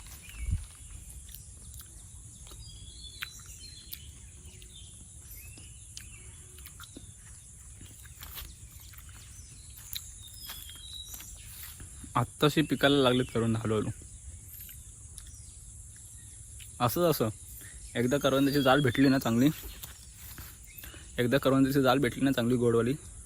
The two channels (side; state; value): both; identical; correlation 1.00